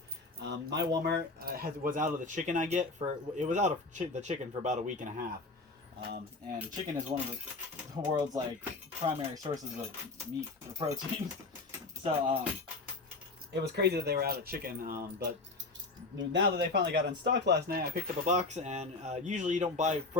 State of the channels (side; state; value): right; quieter; 3.5 dB